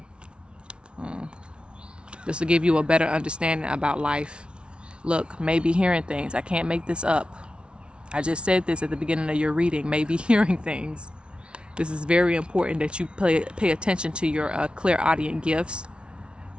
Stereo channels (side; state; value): left; late; 0.057 ms